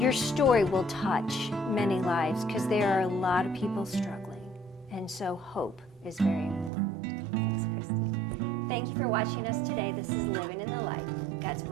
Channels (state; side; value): drops out; left; at 6.7 s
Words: story will touch many lives because there are a lot of people struggling. And so hope is very important. Thanks, Kristi. Thank you for watching us today. This is Living in the Light. God's